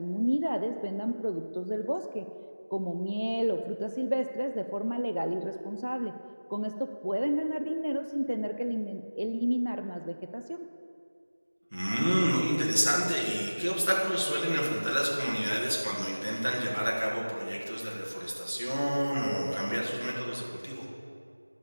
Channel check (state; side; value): inverted; both; correlation -1.00